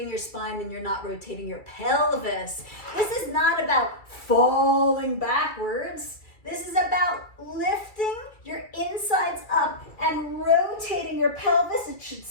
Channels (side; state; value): right; late; 2.3 ms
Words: your spine and you're not rotating your pelvis. This is not about falling backwards. This is about lifting your insides up and rotating your pelvis. It should